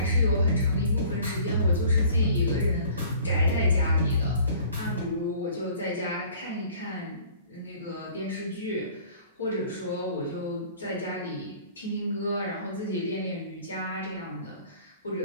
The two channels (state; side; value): inverted; both; correlation -0.50